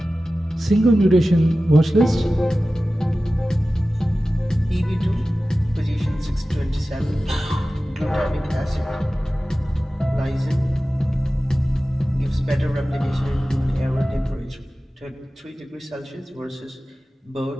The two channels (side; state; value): both; normal; correlation 0.95